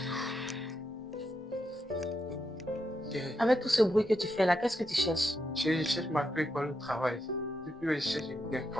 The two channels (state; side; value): normal; both; correlation 0.83